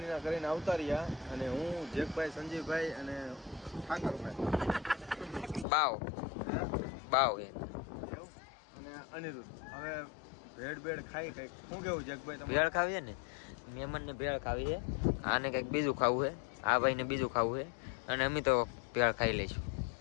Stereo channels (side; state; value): right; drops out; at 5.7 s